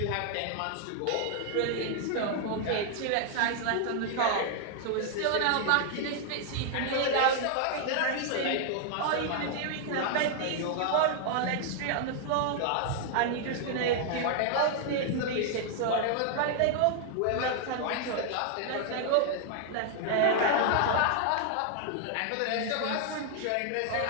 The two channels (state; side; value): different; both; correlation 0.00